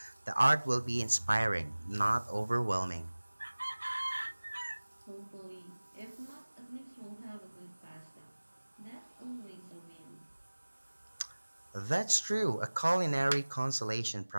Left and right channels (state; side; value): inverted; both; correlation -1.00